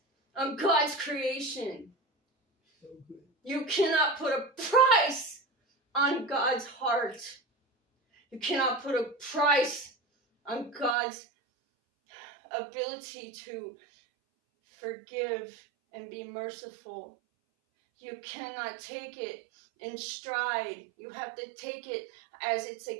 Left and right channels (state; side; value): drops out; left; at 11.0 s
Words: on God's creation. You cannot put a price on God's heart. You cannot put a price on God's ability to forgive and be merciful. You cannot take it in stride. You have to take it as it's